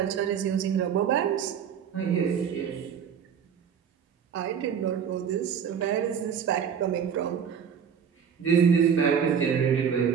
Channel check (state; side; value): quieter; left; 7.6 dB